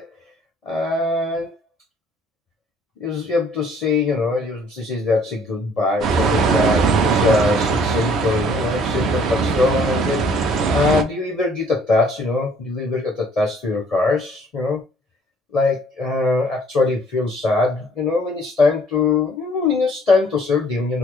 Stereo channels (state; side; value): normal; both; correlation 0.59